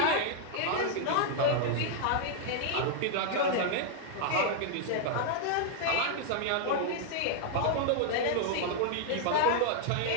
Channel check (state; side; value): different; both; correlation -0.01